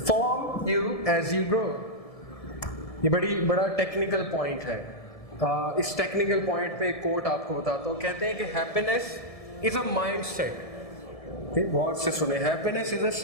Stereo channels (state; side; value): late; right; 1.7 ms